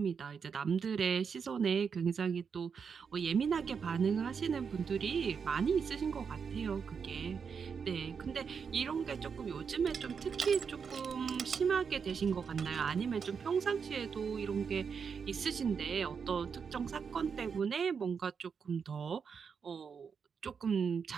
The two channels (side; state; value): left; quieter; 6.2 dB